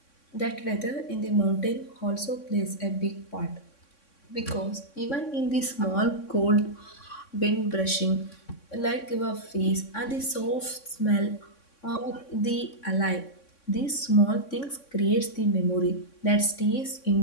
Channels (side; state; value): right; late; 3.6 ms